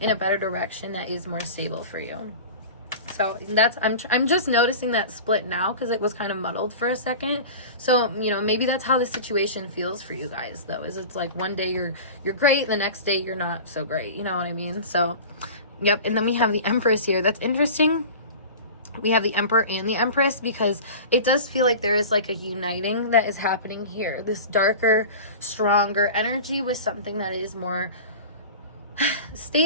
a better direction that is more stable for you. So that's, I'm just noticing that split now because it was kind of muddled for a second. So, maybe that's how the situation feels for you guys, though, is it's like one day you're great, the next day you're not so great. You know what I mean? So, yep. And then we have the Empress here. That's interesting. We have the Emperor and the Empress because it does feel like there is like a uniting that is happening here. This darker, stronger energy with something that is more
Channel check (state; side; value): inverted; both; correlation -0.35